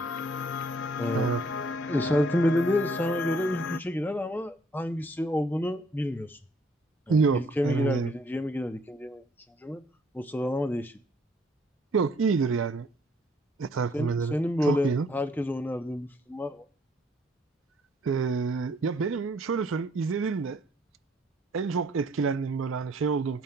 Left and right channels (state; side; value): normal; both; correlation 0.63